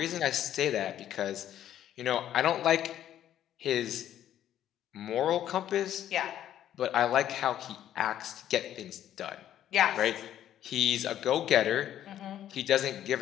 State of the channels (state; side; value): quieter; right; 11.3 dB